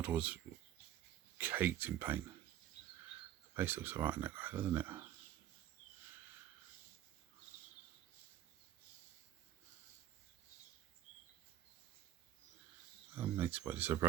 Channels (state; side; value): quieter; left; 12.2 dB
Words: was caked in paint. The face looks alright in that guy, doesn't it? Makes what is a